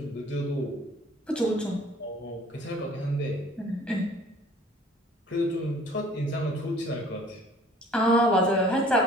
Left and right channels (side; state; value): both; normal; correlation 0.52